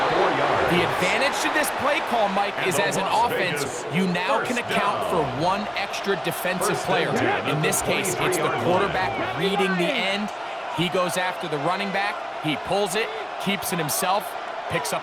4 yards. The advantage to this play call, Mike, is as an offense, you now can account for 1 extra defensive player. In this case, it's the quarterback reading the end. He goes after the running back. He pulls it, keeps it himself, picks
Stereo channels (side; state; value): both; identical; correlation 1.00